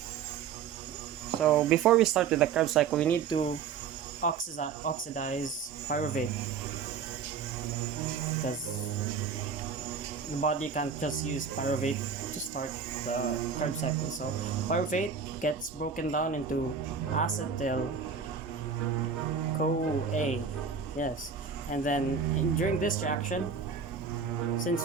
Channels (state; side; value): quieter; left; 6.3 dB